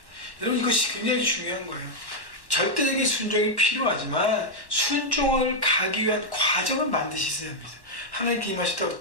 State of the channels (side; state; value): right; late; 1.1 ms